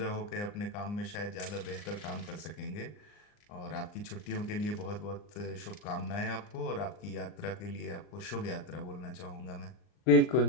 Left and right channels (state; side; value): late; right; 39 ms